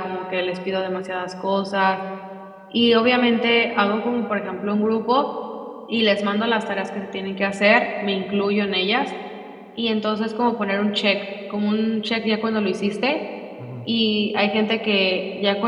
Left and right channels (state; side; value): identical; both; correlation 1.00